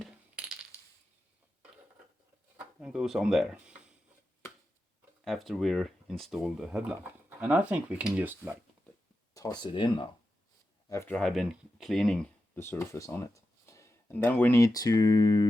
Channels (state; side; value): normal; both; correlation 0.90